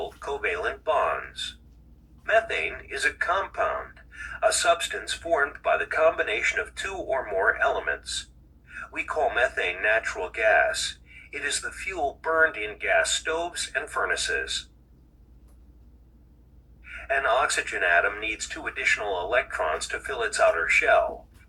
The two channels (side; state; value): both; identical; correlation 1.00